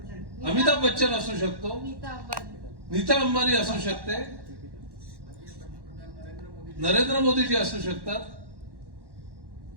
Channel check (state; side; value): late; left; 1.1 ms